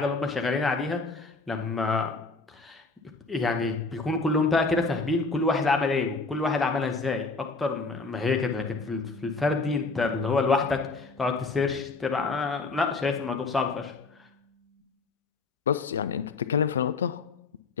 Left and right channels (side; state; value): right; quieter; 3.8 dB